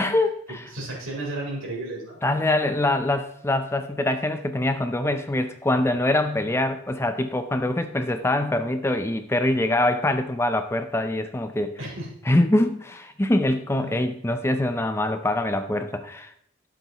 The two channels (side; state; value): both; normal; correlation 0.71